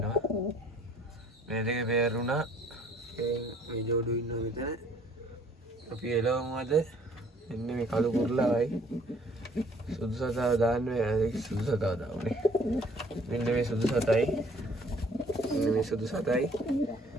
මේ දෙක පෙයර් වුණා. මේ ජෝඩු ඉන්නවා මෙතන. අපි එළවමු අද. එන්න මේ කළු කුරුල්ලාවයි සුදු සතාව දාන්න සුදු සතාව දාන්නේ. මෙන්න මේ සුදු සතයි. මෙන්න මේ සුදු සතයි.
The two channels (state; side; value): normal; both; correlation 0.58